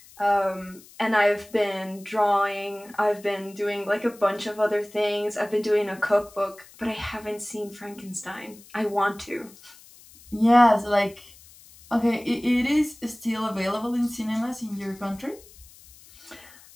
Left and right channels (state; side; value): noise; left; hiss, 23 dB below the sound